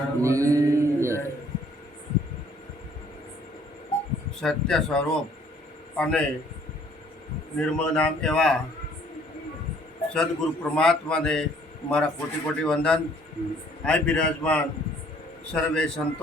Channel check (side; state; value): both; normal; correlation 0.60